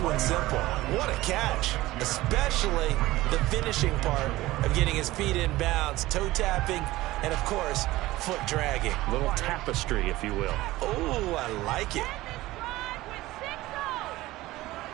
one simple. What a catch, especially the finishing part of getting his feet in bounds, toe tapping, and of course, foot dragging. Little tapestry, if you will. Oh, I like it.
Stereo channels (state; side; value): quieter; left; 17.8 dB